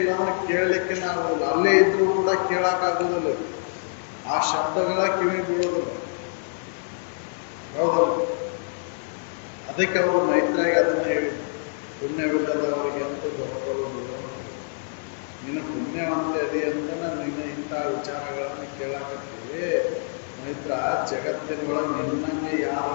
ಅಂದ್ರೆ ಕೇಳಲಿಕ್ಕೆ ಆಗೋದಿಲ್ಲ. ಅಲ್ಲೇ ಇದ್ರೂ ಕೂಡ ಕೇಳಕ್ಕಾಗೋದಿಲ್ಲ. ಆ ಶಬ್ದಗಳ ಕಿವಿ ಬೀಳೋದಿಲ್ಲ. ಹೌದಲ್ಲ? ಅದಕ್ಕೆ ಅವರು ಮೈತ್ರಾಗಿ ಅದನ್ನ ಹೇಳಿದ್ರು, ಪುಣ್ಯವಿಲ್ಲದವರಿಗೆ ಅಂತೂ ಬರ್ಕೊಳ್ಳೋದು. ನೀನು ಪುಣ್ಯವಂತೆ ಅದಿ ಅಂತ ನಿನ್ನ ಇಂಥ ವಿಚಾರಗಳನ್ನು ಕೇಳಾಕತ್ತೀವಿ. ಮೈತ್ರ, ಜಗತ್ತಿನೊಳಗೆ ನಿನ್ನನ್ನೇ ಯಾರು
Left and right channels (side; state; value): right; silent; 56 dB below the other